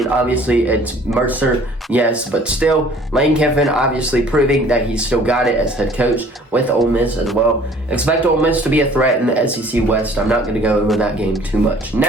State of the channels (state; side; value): normal; both; correlation 0.53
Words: obviously it's Mercer, yes, but still, Lane Kiffin obviously proving that he's still got it as head coach with Ole Miss as well. Expect Ole Miss to be a threat in the SEC West. I'm not going to go over that game too much.